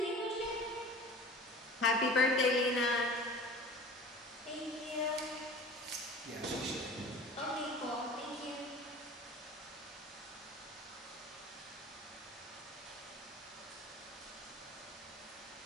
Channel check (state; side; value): normal; both; correlation 0.42